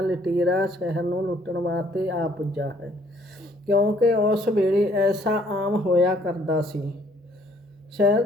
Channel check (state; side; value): normal; both; correlation 0.63